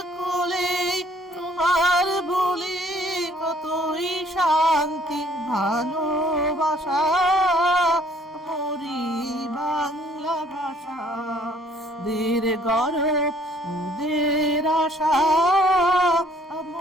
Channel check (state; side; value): normal; both; correlation 0.60